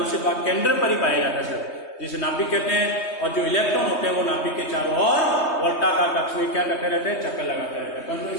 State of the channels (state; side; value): late; right; 3.2 ms